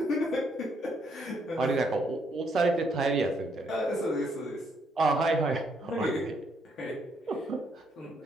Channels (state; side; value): normal; both; correlation 0.72